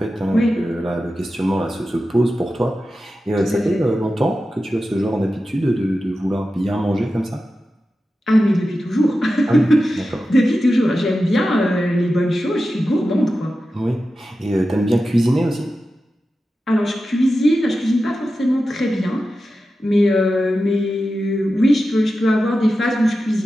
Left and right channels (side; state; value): both; normal; correlation 0.92